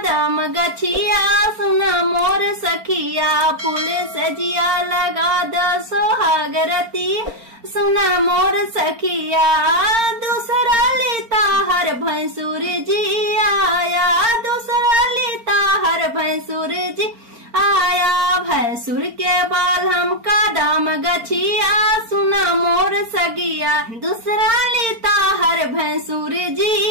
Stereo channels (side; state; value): left; late; 4.4 ms